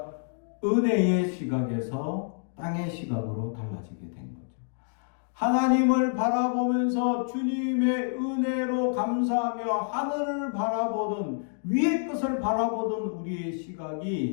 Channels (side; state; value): right; silent; digital silence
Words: 은혜의 시각에서 땅의 시각으로 달라지게 된 거죠. 하나님을 바라보면서 주님의 은혜로 감사하며 하늘을 바라보던, 위의 것을 바라보던 우리의